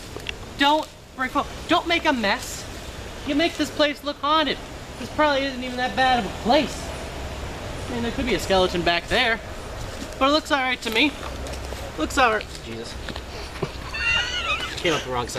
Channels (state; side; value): identical; both; correlation 1.00